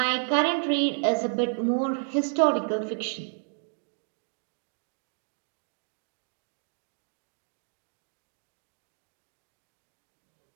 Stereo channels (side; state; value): left; silent; 57 dB below the other